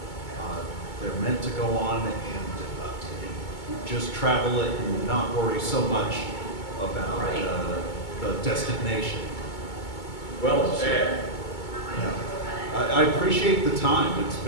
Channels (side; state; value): right; late; 2.2 ms